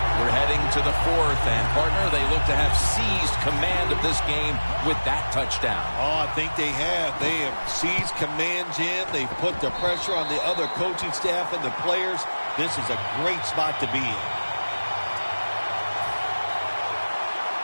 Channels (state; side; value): inverted; both; correlation -1.00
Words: We're heading to the 4th, and partner, they look to have seized command of this game with that touchdown. Oh, I think they have. They have seized command, Jim. They've put the pressure on the other coaching staff and the players. This is a great spot to be in.